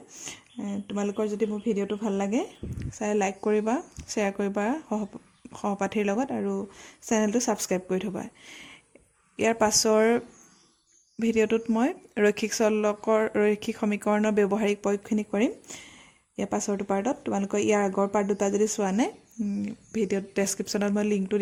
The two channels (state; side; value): identical; both; correlation 1.00